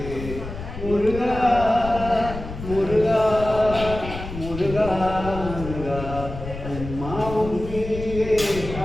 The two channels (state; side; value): noise; left; rumble, 9 dB below the sound